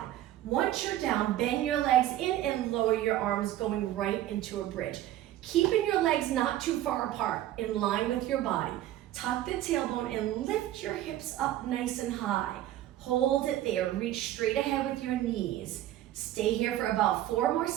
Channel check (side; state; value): left; quieter; 13.5 dB